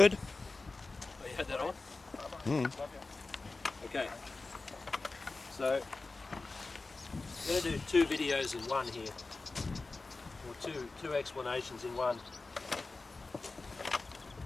Oh, you had that on? Mm. Love you. Okay. So I'm going to do 2 videos in one here, or two explanations in one.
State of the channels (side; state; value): right; quieter; 3.6 dB